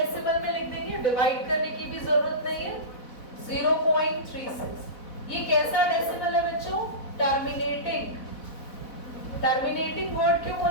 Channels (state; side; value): late; right; 4.1 ms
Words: में लिख देंगे, डिवाइड करने की भी जरूरत नहीं है। 0.36। ये कैसा डेसिमल है बच्चों? टर्मिनेटिंग। टर्मिनेटिंग वर्ड क्यों